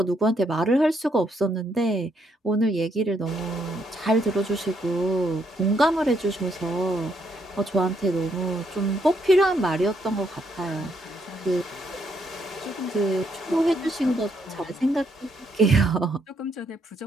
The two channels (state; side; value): normal; both; correlation 0.74